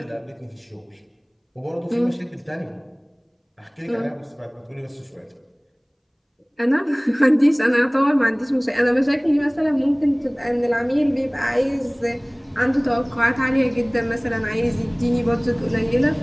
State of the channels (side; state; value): both; identical; correlation 1.00